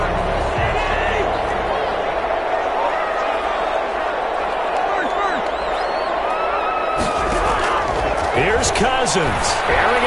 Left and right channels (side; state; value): both; identical; correlation 1.00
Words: Here's Cousins. Airing